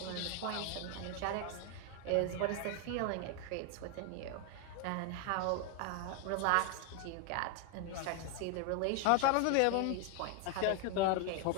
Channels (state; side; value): different; both; correlation 0.01